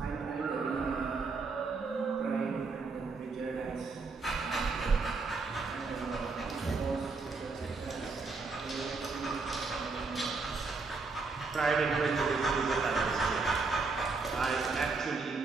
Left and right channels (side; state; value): left; quieter; 4.2 dB